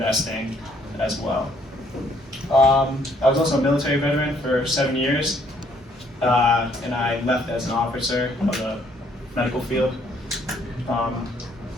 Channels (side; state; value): both; normal; correlation 0.66